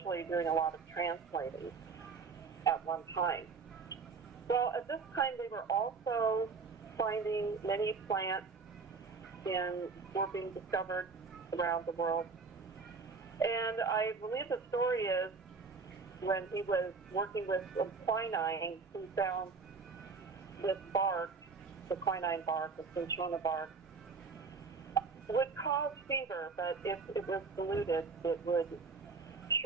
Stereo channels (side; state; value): left; quieter; 4.8 dB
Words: doing a lot of translating at one time. Well, at this time they were also finding many plants were being discovered around the world. And I believe the story is when he was working with some quinine, he found this bark, the quinine bark, the cinchona bark, would cause fever, but if it was diluted, it would